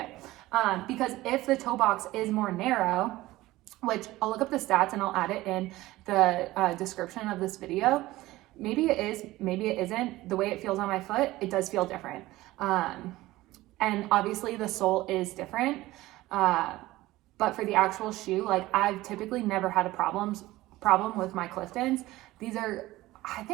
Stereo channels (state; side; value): quieter; left; 17.7 dB